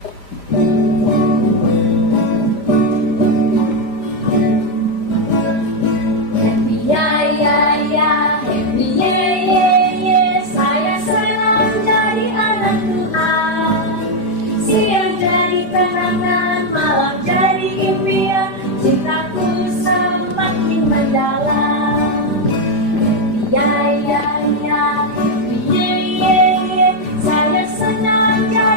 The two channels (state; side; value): late; right; 5.0 ms